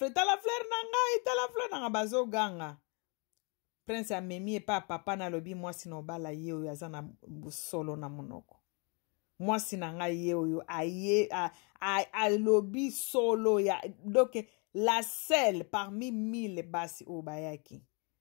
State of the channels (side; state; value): right; quieter; 33.9 dB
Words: tala fleur na ngai tala fleur na bazo ganga. Prince amemi epa papa na lobi mwasi no bala ye oyo aza na busolo na munoko. Mwasi na ngai ye oyo alobi solo ya donc la seule parmi 1000 basi o bayaki.